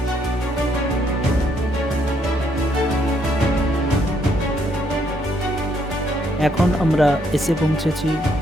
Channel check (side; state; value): both; normal; correlation 0.71